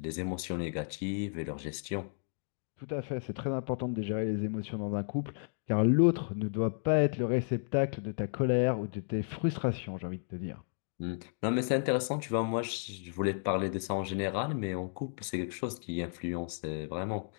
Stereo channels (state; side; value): silent; right; digital silence